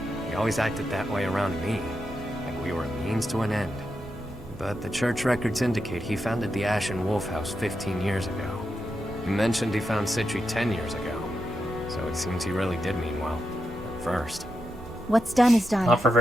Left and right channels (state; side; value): normal; both; correlation 0.86